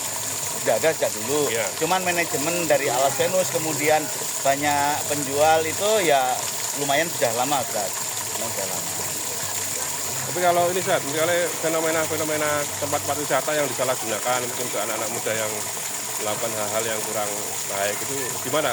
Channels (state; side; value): identical; both; correlation 1.00